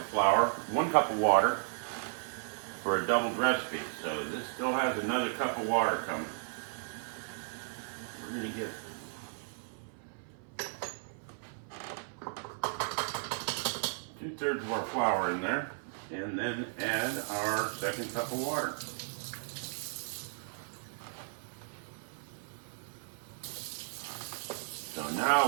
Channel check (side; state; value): left; silent; 55 dB below the other